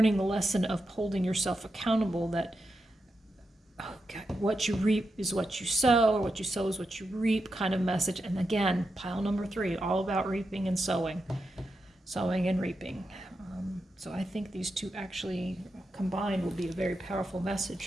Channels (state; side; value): normal; both; correlation 0.87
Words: the lesson of holding yourself accountable, that okay, what you reap is what you sow, or what you sow is what you reap kind of message. And again, pile number 3, all about reaping and sowing and reaping. So I think these two actually combined will be a very powerful